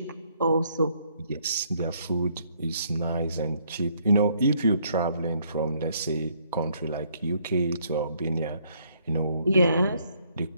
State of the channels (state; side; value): inverted; both; correlation -0.68